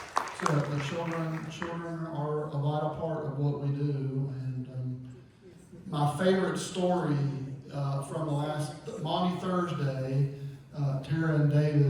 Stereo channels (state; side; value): identical; both; correlation 1.00